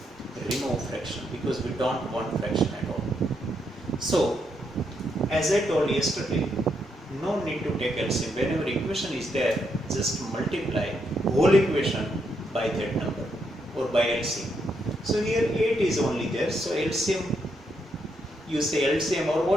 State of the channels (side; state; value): both; normal; correlation 0.78